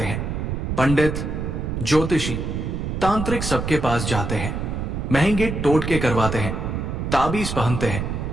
हैं। पंडित, ज्योतिषी, तांत्रिक सबके पास जाते हैं, महंगे टोटके करवाते हैं, ताबीज पहनते हैं,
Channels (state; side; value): noise; right; rumble, 3 dB below the sound